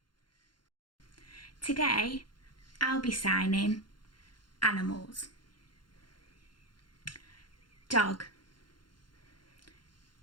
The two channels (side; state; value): right; late; 0.71 ms